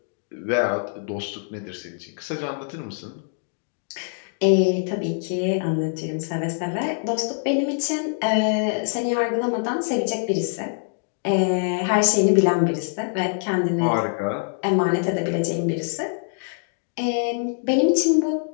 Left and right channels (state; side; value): silent; right; digital silence